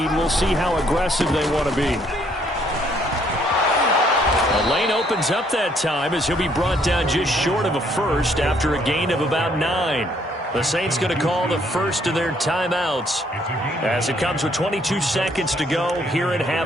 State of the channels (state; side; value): normal; both; correlation 0.67